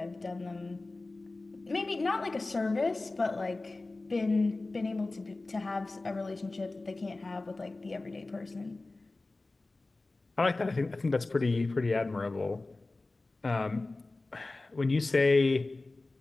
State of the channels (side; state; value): right; quieter; 3.2 dB